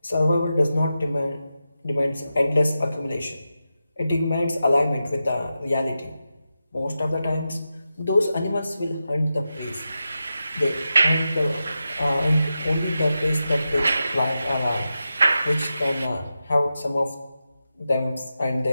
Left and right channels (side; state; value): both; inverted; correlation -0.90